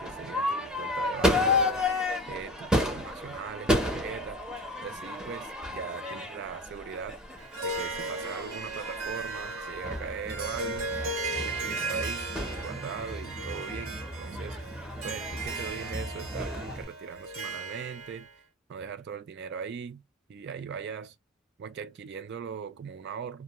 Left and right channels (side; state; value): both; normal; correlation 0.32